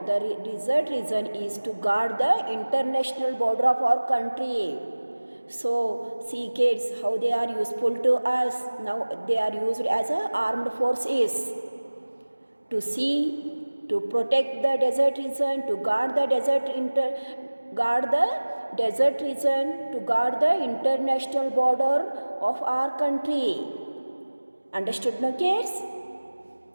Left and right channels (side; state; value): both; inverted; correlation -1.00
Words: desert region is to guard the international border of our country. So see, kids, how they are useful to us. Now they are used as a armed forces to protect the desert region, to guard the desert region, to guard the international border of our country. Understood, no, kids?